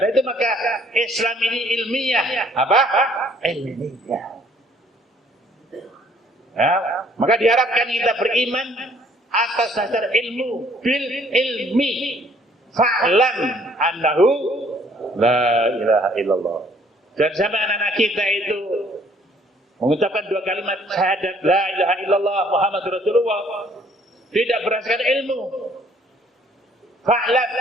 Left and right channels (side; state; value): both; normal; correlation 0.61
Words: itu maka Islam ini ilmiah, apa? Ilmiah. Ya, maka diharapkan kita beriman atas dasar ilmu, bil ilmi, fa'lam annahu la ilaha illallah. Dan sama anak-anak kita itu mengucapkan dua kalimat syahadat la ilaha illallah Muhammadur Rasulullah tidak berdasarkan ilmu, fa'lam,